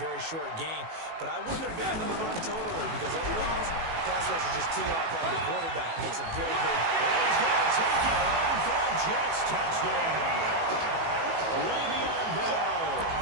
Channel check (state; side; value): late; left; 18 ms